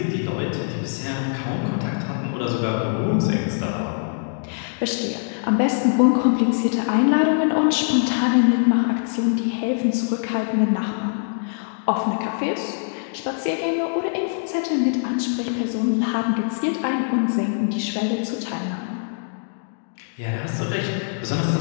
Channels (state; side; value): silent; right; digital silence